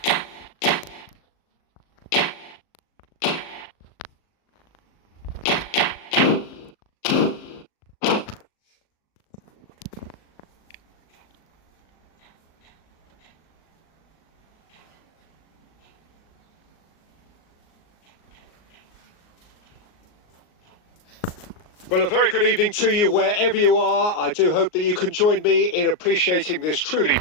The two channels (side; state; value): right; late; 38 ms